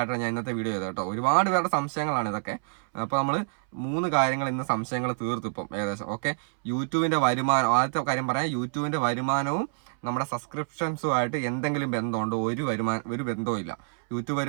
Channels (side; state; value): left; silent; 60 dB below the other